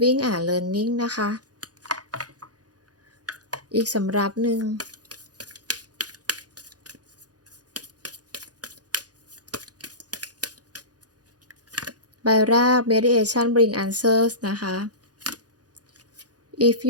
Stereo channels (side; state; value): left; late; 0.68 ms